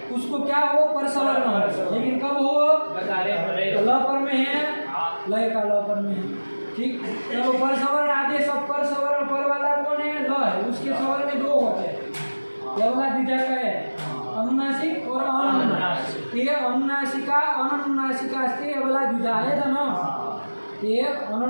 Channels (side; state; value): both; inverted; correlation -1.00